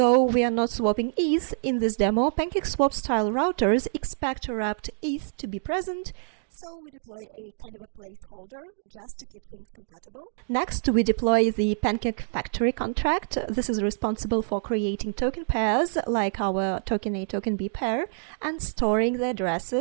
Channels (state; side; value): silent; left; digital silence